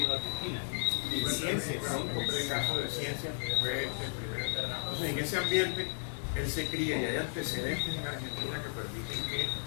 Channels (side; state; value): right; silent; digital silence